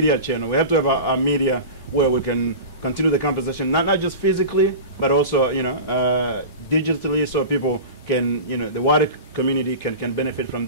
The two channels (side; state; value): both; inverted; correlation -0.31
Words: channel. We have to have a media where we can continue the conversation, not just physically, but also digitally, so people can, the wider community can benefit from